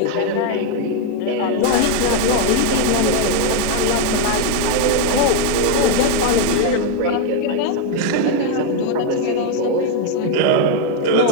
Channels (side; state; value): both; different; correlation 0.01